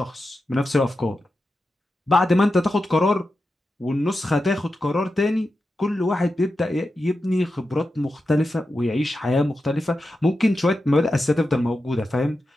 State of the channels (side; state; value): both; normal; correlation 0.90